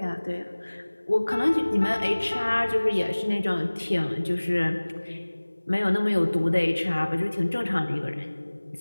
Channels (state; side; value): inverted; both; correlation -1.00